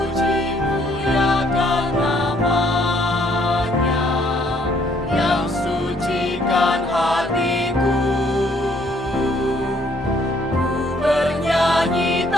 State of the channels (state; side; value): normal; both; correlation 0.65